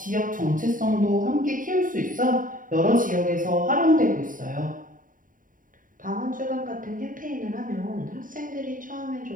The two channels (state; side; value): late; left; 0.39 ms